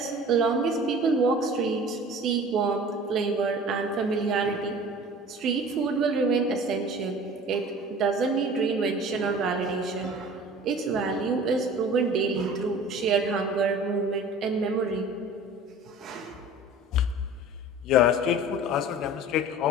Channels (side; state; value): both; normal; correlation 0.42